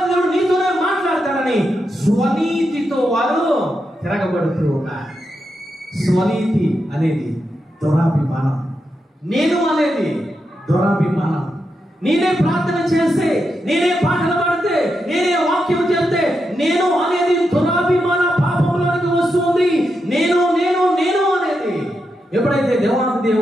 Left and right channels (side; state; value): both; normal; correlation 0.85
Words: దేవుడు నీతోనే మాట్లాడతాడని స్వనీతితో వారు తిరగబడుతూ ఉన్నారు. స్వనీతి అనేది దురాభిమానం, నేను అనేది దురాభిమానం. నేనే ప్రార్థన చేస్తే, నేనే పాటలు పాడితే, నేనే వాక్యం చేస్తే నేను అనేది దురాభిమాన పాపంలోనికి వస్తుంది. నేను నేను నేను అనేది ఎప్పుడైతే దేవాది